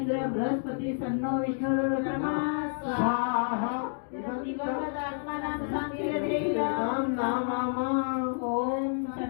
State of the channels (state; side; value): silent; right; 58 dB below the other